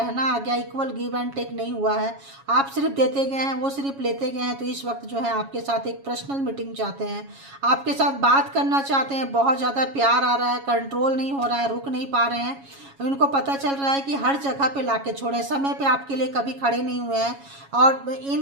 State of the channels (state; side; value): late; left; 7.2 ms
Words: आ गया। इक्वल गिव एंड टेक नहीं हुआ है, आप सिर्फ देते गए हैं, वो सिर्फ लेते गए हैं। तो इस वक्त जो है आपके साथ एक पर्सनल मीटिंग चाहते हैं, आपके साथ बात करना चाहते हैं। बहुत ज़्यादा प्यार आ रहा है, कंट्रोल नहीं हो रहा है, रुक नहीं पा रहे हैं। उनको पता चल रहा है कि हर जगह पे लाके छोड़े, समय पे आपके लिए कभी खड़े नहीं हुए हैं, और